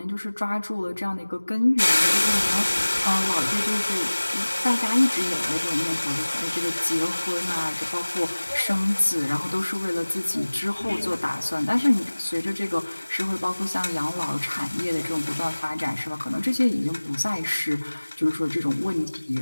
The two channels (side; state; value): both; inverted; correlation -1.00